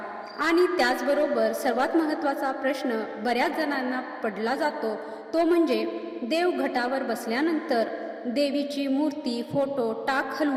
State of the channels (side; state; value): both; identical; correlation 1.00